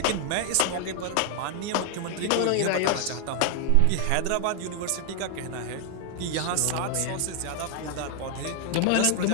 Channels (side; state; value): both; different; correlation 0.00